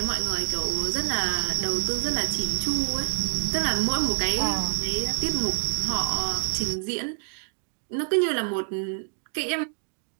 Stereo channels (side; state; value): left; silent; digital silence